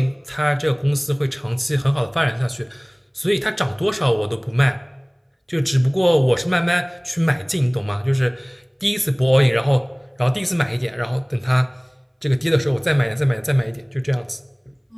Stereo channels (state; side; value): identical; both; correlation 1.00